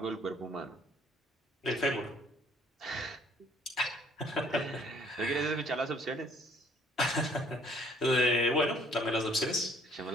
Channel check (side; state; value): both; normal; correlation 0.59